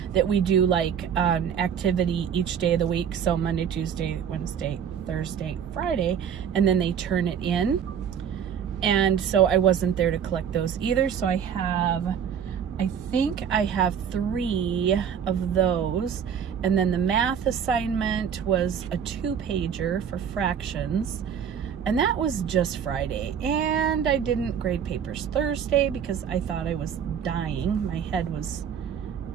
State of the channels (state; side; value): quieter; left; 8.0 dB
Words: that we do like an activity each day of the week. So Monday, Tuesday, Wednesday, Thursday, Friday, and then they turn it in. And so I wasn't there to collect those either. So I think I have 3 of those. And then the math assignment was a 2-pager for fractions. And that was just Friday. And I didn't grade papers Thursday because I thought I was dying. My head was